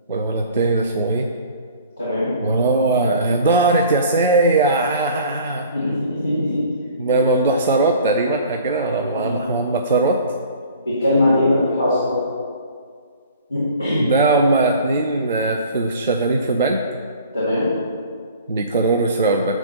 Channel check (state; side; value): inverted; both; correlation -0.48